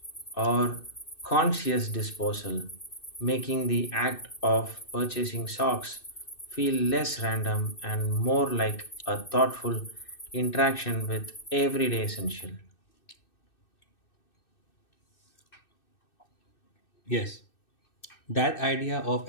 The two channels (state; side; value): late; right; 2.6 ms